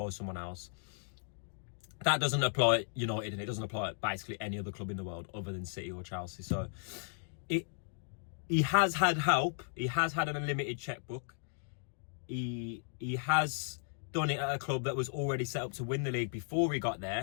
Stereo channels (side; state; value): right; silent; digital silence